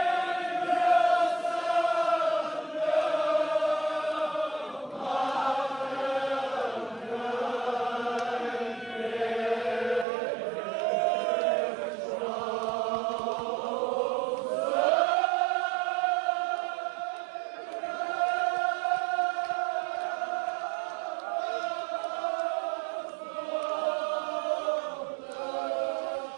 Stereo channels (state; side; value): drops out; left; at 10.1 s